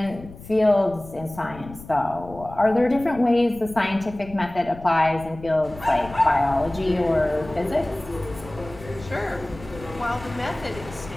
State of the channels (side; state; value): left; noise; rumble, 16 dB below the sound